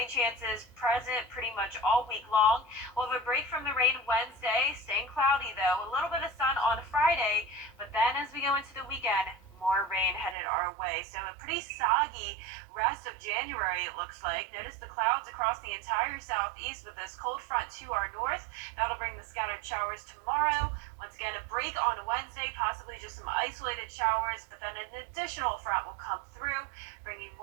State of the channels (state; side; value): drops out; left; at 10.4 s